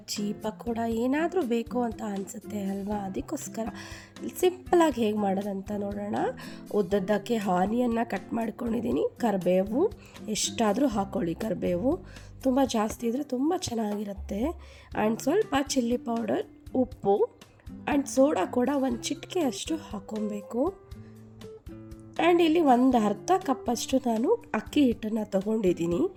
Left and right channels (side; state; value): both; identical; correlation 1.00